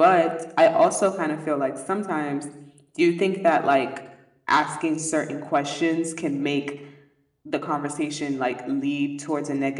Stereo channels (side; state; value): both; identical; correlation 1.00